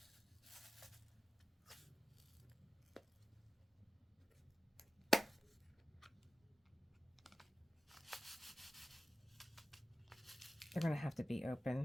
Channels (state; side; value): normal; both; correlation 0.93